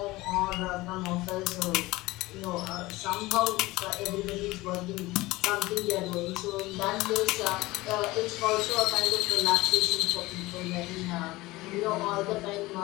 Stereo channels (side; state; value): right; quieter; 19.8 dB